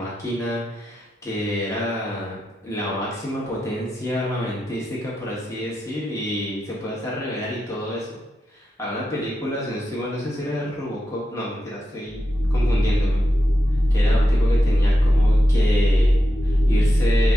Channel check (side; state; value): both; normal; correlation 0.88